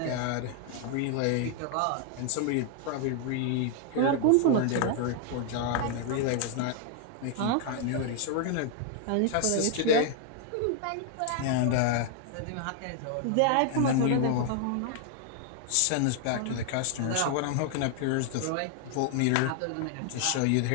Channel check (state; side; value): different; both; correlation 0.00